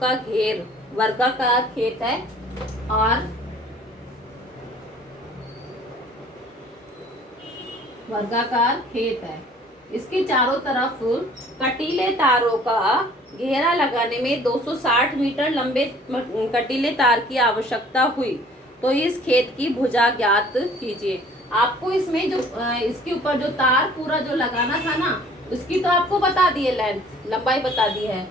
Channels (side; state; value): both; normal; correlation 0.53